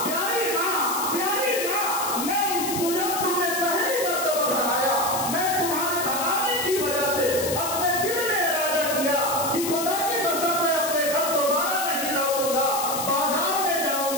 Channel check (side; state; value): left; noise; hiss, 4 dB below the sound